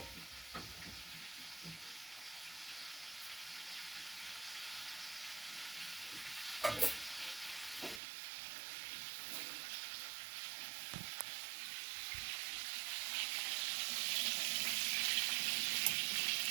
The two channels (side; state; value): left; drops out; at 8.0 s